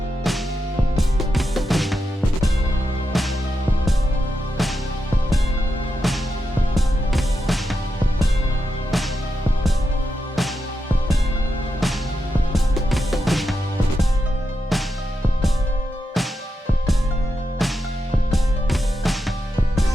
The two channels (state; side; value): normal; both; correlation 0.87